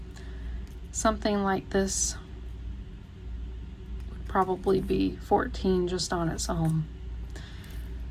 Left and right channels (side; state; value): both; identical; correlation 1.00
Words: Something like this would probably be $14 just on its own.